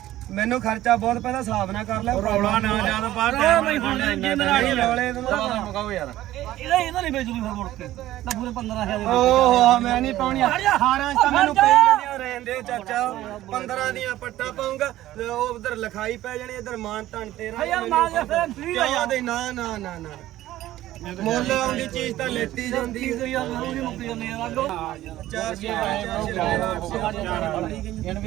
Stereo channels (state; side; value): quieter; left; 14.7 dB